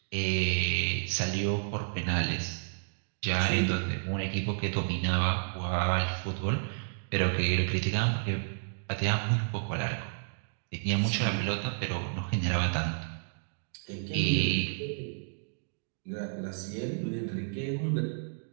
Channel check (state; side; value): silent; left; digital silence